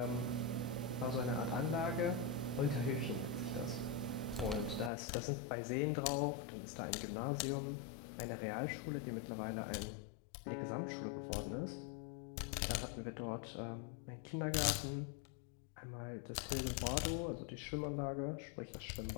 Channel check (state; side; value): drops out; right; at 4.9 s